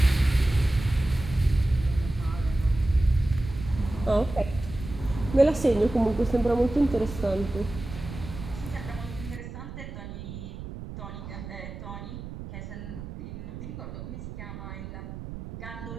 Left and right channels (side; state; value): right; noise; rumble, 10 dB below the sound